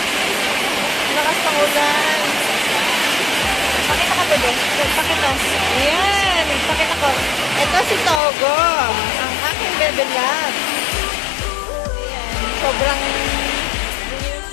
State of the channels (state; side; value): drops out; right; at 8.2 s